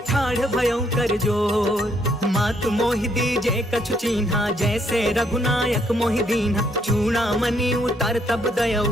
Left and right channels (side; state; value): both; normal; correlation 0.70